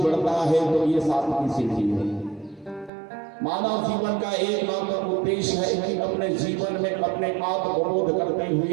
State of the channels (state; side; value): drops out; left; at 2.9 s